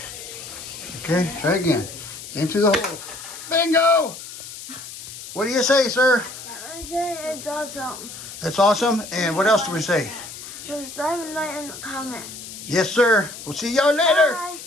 Okay, try again. Aim through the hole. Bingo! What do you say, sir? I say it's awesome. That's awesome. And what else do we say? Subscribe and like and comment. Yes, sir. We'll see y'all later. Bye.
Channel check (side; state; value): left; noise; hiss, 12 dB below the sound